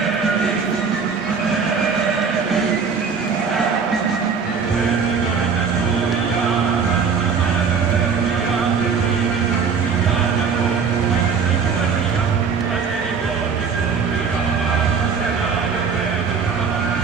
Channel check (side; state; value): left; quieter; 5.8 dB